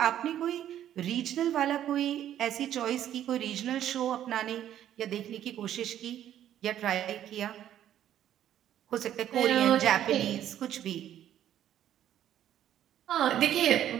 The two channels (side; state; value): left; quieter; 11.2 dB